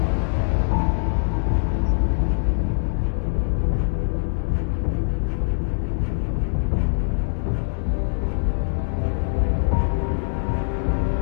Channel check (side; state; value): right; silent; digital silence